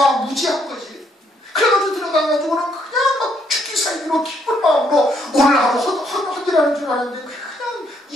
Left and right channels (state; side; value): normal; both; correlation 0.71